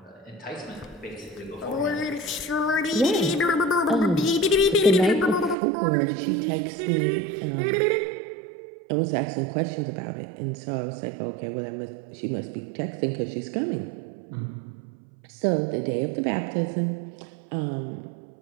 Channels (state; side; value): drops out; left; at 5.6 s